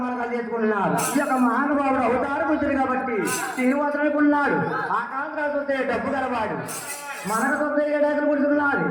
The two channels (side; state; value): both; identical; correlation 1.00